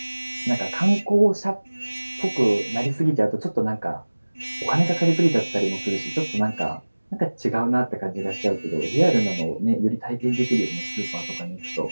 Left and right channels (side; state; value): both; inverted; correlation -1.00